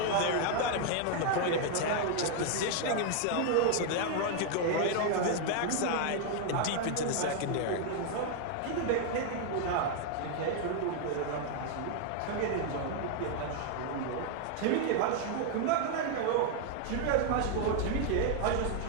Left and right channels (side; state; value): both; different; correlation 0.00